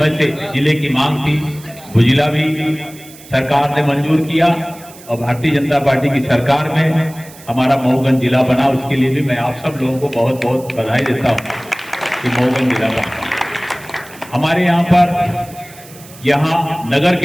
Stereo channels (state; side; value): noise; right; hiss, 20 dB below the sound